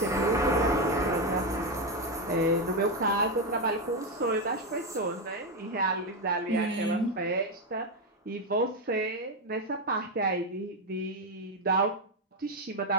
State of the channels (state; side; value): normal; both; correlation 0.08